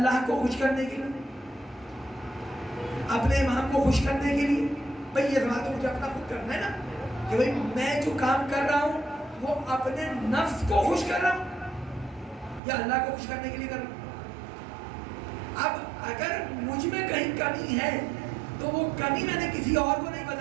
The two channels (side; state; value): left; drops out; at 12.6 s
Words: کو خوش کرنے کے لیے, اپنے امام کو خوش کرنے کے لیے؟ بھئی یہ بات تو مجھے اپنا خود کرنا ہے نا, کہ بھئی میں جو کام کر رہا ہوں وہ اپنے نفس کو خوش کر رہا ہوں یا اللہ کو خوش کرنے کے لیے کر رہا ہوں. اب اگر مجھ میں کہیں کمی ہے تو وہ کمی میں نے کسی اور کو نہیں